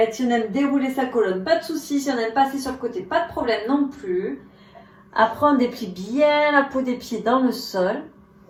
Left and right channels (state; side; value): identical; both; correlation 1.00